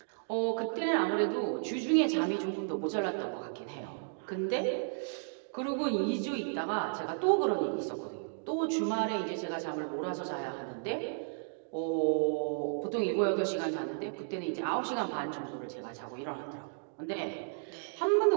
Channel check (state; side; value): silent; left; digital silence